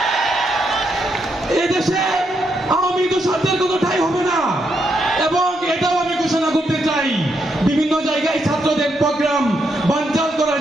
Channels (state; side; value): normal; both; correlation 0.79